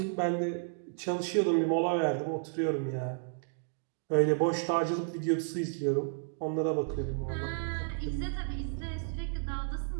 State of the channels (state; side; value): silent; left; digital silence